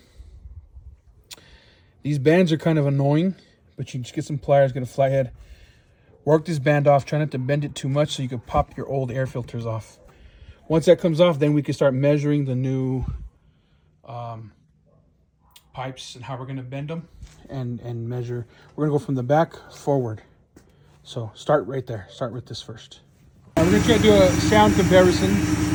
These bands are kind of annoying, but you just get some pliers, get a fly head, work this band off, try not to bend it too much so you can pop your old air filters off. Once that comes off, then we can start measuring the new pipes and how we're gonna bend them and measure. We're gonna go from the back forward. So start right there, start with this first. We're gonna try to do a sound comparison.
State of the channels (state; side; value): identical; both; correlation 1.00